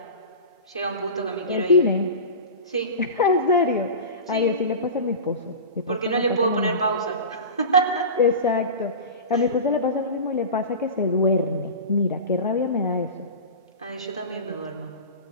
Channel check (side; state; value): both; inverted; correlation -0.30